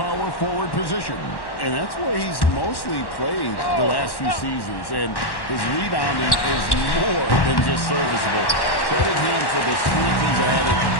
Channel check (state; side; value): late; right; 1.1 ms